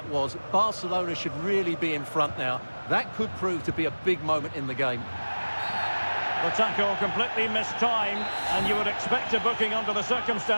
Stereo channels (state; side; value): inverted; both; correlation -1.00